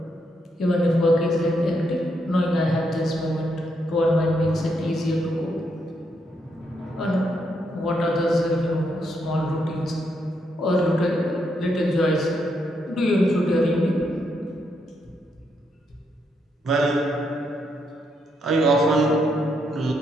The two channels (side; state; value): both; normal; correlation 0.78